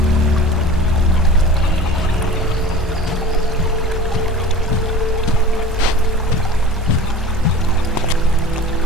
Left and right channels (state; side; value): normal; both; correlation 0.39